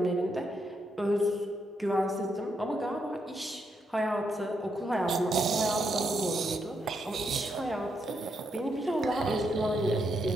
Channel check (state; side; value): normal; both; correlation 0.79